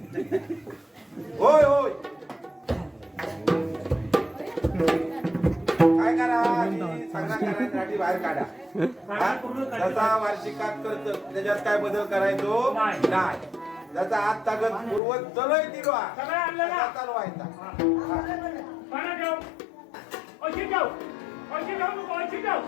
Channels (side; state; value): right; drops out; at 15.0 s